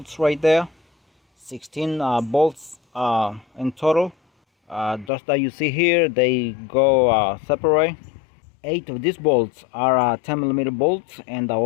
right there. 16 bolts in total. Those that you see here, they go separate. 8 of these bolts are 10mm bolts, and the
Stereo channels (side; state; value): right; drops out; at 5.1 s